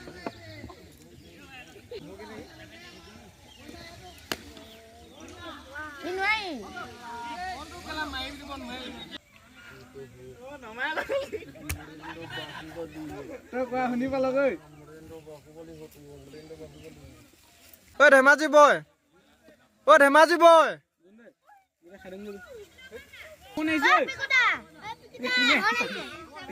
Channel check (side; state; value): both; identical; correlation 1.00